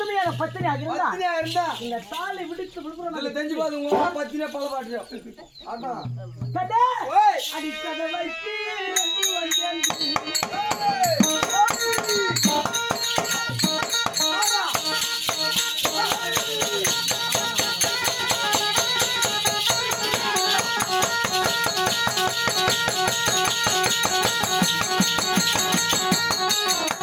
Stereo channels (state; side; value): identical; both; correlation 1.00